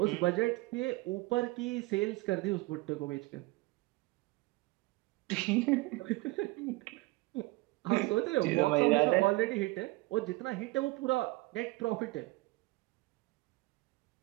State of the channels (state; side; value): quieter; left; 21.5 dB